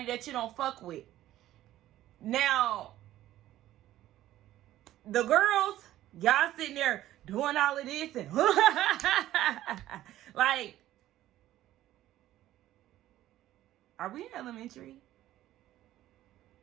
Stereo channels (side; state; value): left; quieter; 13.9 dB